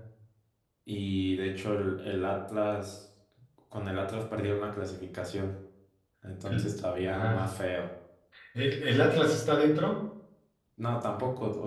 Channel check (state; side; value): identical; both; correlation 1.00